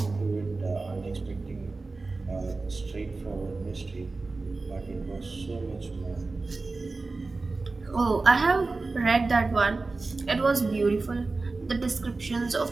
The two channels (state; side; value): quieter; left; 3.6 dB